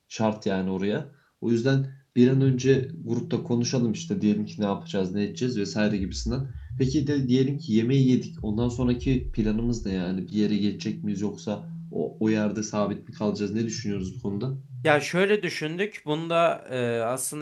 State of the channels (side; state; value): both; identical; correlation 1.00